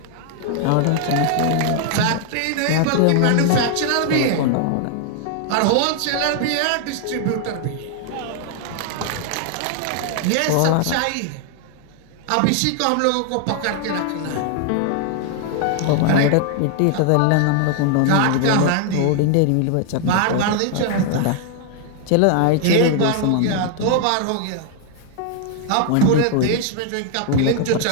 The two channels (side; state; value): both; different; correlation 0.00